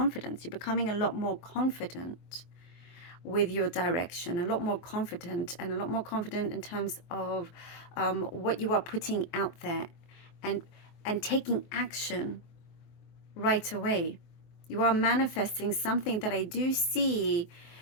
You're becoming a lot more confident with your direction, a lot more confident, and a lot more confident in terms of what you are putting out there, and taking action right away. You are manifesting something that I do see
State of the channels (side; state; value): right; late; 23 ms